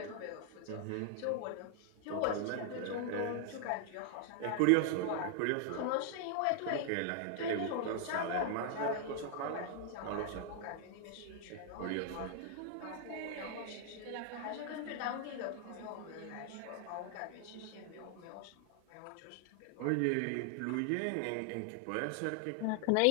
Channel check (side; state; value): both; different; correlation 0.00